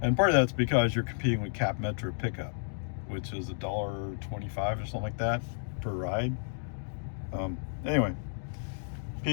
And part of that's because you're competing with Cap Metro pickup, which is $1.25 or something like that per ride. Anyway,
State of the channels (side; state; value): right; silent; digital silence